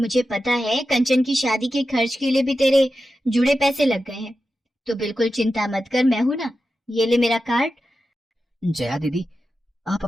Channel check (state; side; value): normal; both; correlation 0.91